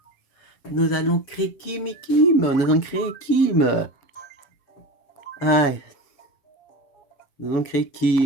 Nous allons créer Kim et Kim, nous allons créer Kim. Aïe, nous allons créer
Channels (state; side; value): late; right; 6.9 ms